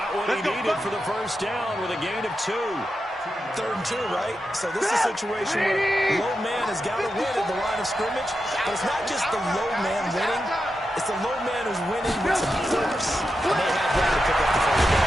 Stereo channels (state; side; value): normal; both; correlation 0.88